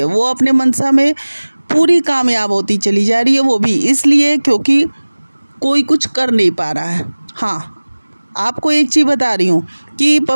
वो अपने मनसा में पूरी कामयाब होती चली जा रही है, वो भी इसलिए क्योंकि कोई कुछ कर नहीं पा रहा है। हाँ, आपको एक चीज़ बता रही हूँ कि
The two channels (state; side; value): inverted; both; correlation -1.00